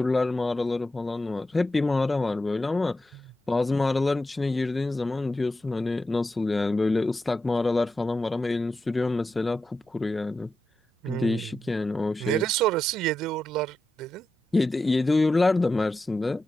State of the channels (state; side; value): normal; both; correlation 0.89